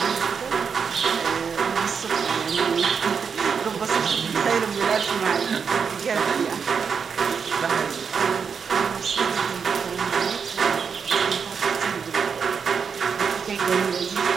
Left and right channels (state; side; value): quieter; left; 6.2 dB